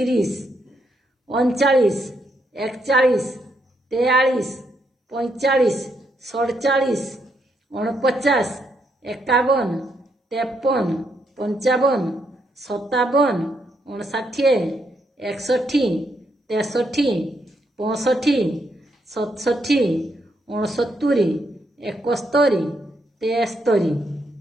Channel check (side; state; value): both; normal; correlation 0.77